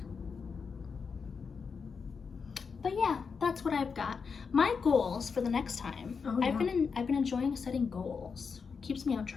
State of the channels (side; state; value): right; quieter; 5.5 dB